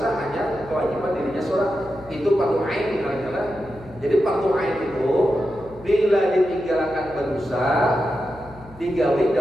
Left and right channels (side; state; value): left; noise; hum, 20 dB below the sound